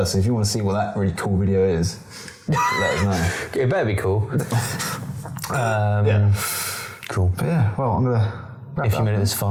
So if you want to see what that really cool video is, let us know. It better be cool. Yeah. Cool. But yeah, well, I'm going to wrap If you made it this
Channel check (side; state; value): both; identical; correlation 1.00